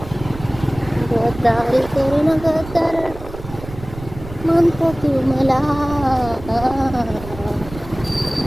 गद्दारी करून ग तर म्हणतो तू मला.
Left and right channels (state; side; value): noise; right; rumble, 14 dB below the sound